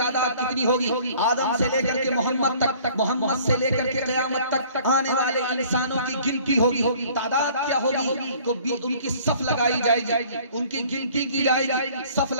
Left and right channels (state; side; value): inverted; both; correlation -0.53